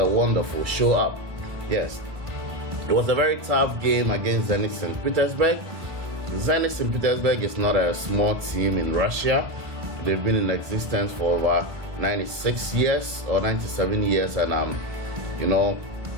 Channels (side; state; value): left; late; 1.7 ms